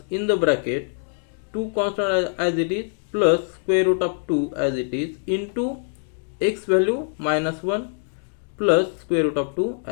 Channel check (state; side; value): silent; right; 63 dB below the other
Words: in the bracket 2 constant as it is plus square root of 2 as it is into x value minus 1 plus square root of 2